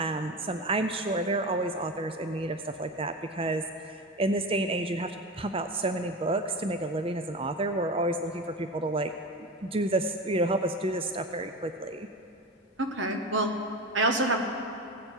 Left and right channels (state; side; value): normal; both; correlation 0.25